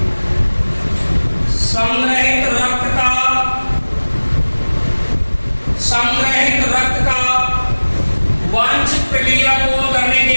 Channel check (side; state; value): both; inverted; correlation -1.00